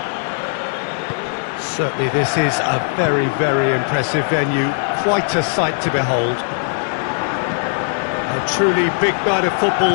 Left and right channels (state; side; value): silent; right; 67 dB below the other